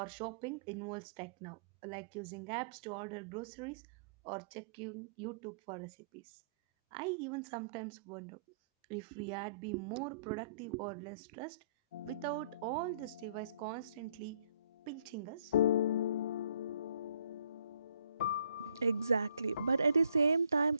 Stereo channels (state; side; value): inverted; both; correlation -0.61